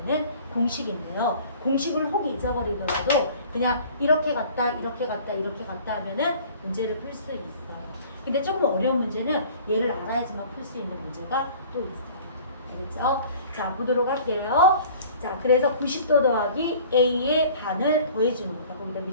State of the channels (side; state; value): both; inverted; correlation -0.48